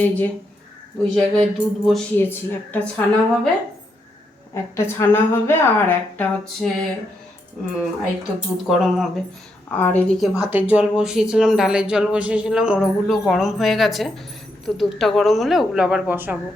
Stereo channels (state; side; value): normal; both; correlation 0.80